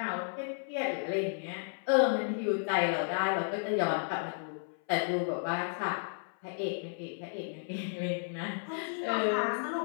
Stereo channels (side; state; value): right; silent; 56 dB below the other